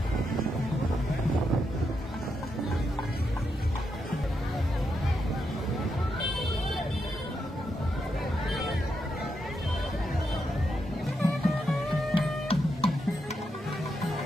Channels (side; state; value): both; normal; correlation 0.83